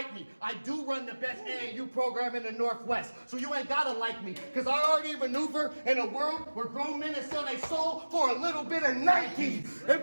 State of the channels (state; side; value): inverted; both; correlation -1.00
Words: me. I do run the best AAU program in the Northwest, so you ain't gotta like me, cause I already maneuver in a world where grown men sell their soul for a little bit of Nike. And